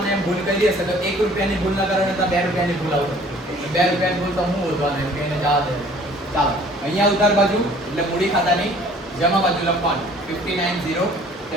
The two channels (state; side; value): normal; both; correlation 0.53